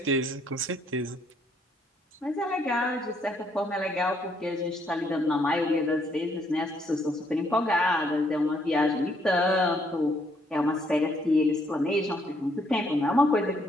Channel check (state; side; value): normal; both; correlation 0.70